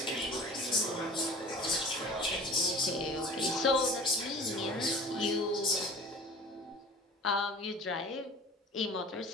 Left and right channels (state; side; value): normal; both; correlation 0.41